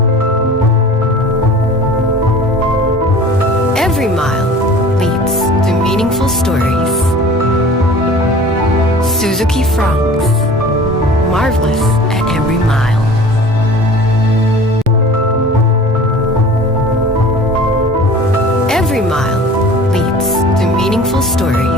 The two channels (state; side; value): normal; both; correlation 0.43